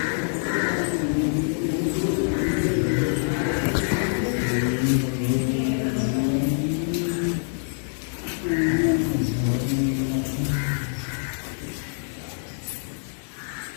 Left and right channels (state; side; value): silent; right; digital silence